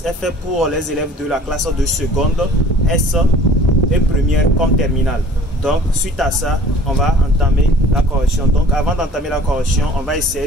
est fait pour les élèves de la classe de seconde, S et première comme terminale. Donc suite à ça, on va entamer la correction. Donc avant d'entamer la correction, on va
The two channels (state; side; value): normal; both; correlation 0.49